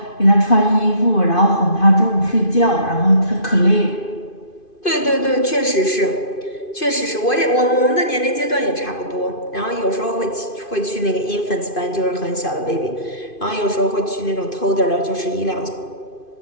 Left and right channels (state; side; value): late; right; 2.5 ms